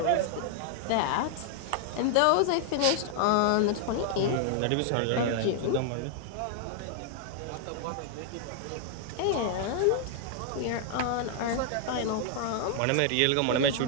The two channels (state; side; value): different; both; correlation 0.00